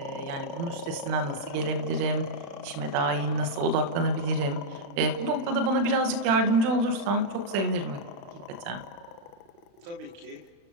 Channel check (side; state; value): left; late; 35 ms